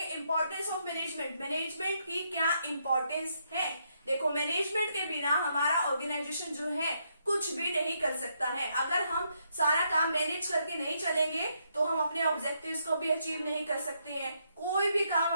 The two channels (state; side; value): inverted; both; correlation -0.76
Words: Importance of management. मैनेजमेंट की क्या इंपॉर्टेंस है? देखो, मैनेजमेंट के बिना हमारा ऑर्गेनाइजेशन जो है कुछ भी नहीं कर सकता है। अगर हम सारा काम मैनेज करके नहीं चलेंगे तो हम अपने ऑब्जेक्टिव्स को भी अचीव नहीं कर सकते हैं। कोई भी काम